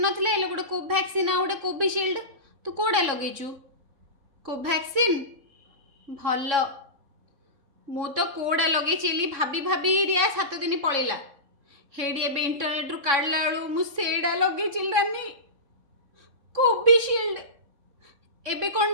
नथिले एलो गोटे कोवैक्सीन आ गोटे कोविशील्ड तू कोडा लगेचु कोवैक्सीन भल मु तो कोडा लगेचेली भाभी भाभी रिया 7 दिन पळेला हेडी एबे इंटरनेट रु काढला बेलू मु सेडा लगेचिल नानी कोविशील्ड एबे कौन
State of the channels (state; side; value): late; left; 3.6 ms